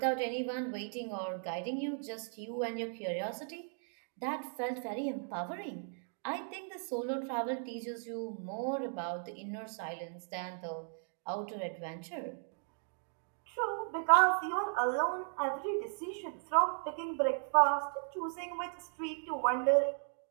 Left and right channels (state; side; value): silent; left; 53 dB below the other